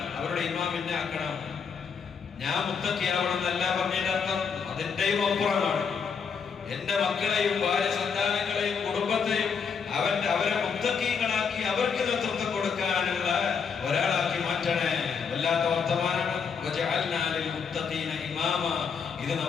അവരുടെ ഇമാമിനെ ആക്കണം. ഞാൻ മുത്തഖിയാവണം എന്നല്ല പറഞ്ഞതിന്റെ അർത്ഥം, അതിന്റെയും അപ്പുറമാണ്. എന്റെ മക്കളെയും ഭാര്യ സന്താനങ്ങളെയും കുടുംബത്തെയും അവരെ മുത്തഖീങ്ങളാക്കി അവർക്ക് നേതൃത്വം കൊടുക്കാനുള്ള ഒരാളാക്കി മാറ്റണേ. വല്ലാത്ത വർത്തമാനമാണ്. വജഅൽനാ ലിൽ മുത്തഖീന ഇമാമാ. ഇത്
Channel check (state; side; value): quieter; right; 6.2 dB